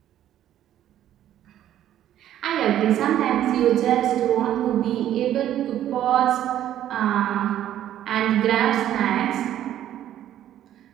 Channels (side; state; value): left; quieter; 11.7 dB